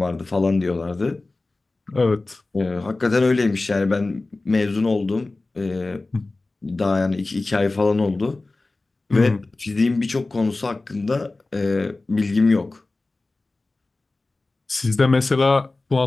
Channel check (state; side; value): quieter; right; 3.2 dB